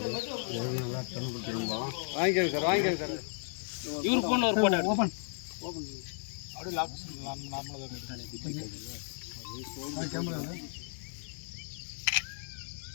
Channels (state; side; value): silent; right; 55 dB below the other